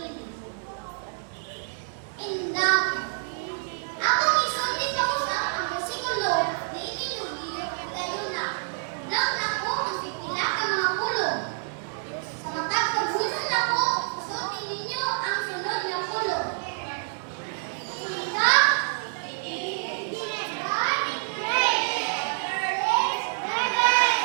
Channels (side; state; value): left; silent; 60 dB below the other